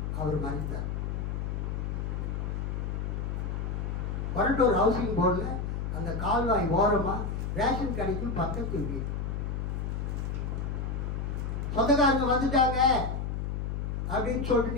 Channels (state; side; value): noise; left; hum, 2 dB below the sound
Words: அவர் மரித்தார். வரட்டூர் ஹவுசிங் போர்டில் அந்த கால்வாய் ஓரமா ரேஷன் கடைக்கு பக்கத்து வீடு. சொந்தக்காரங்க வந்துட்டாங்க அப்படின்னு சொல்லிட்டு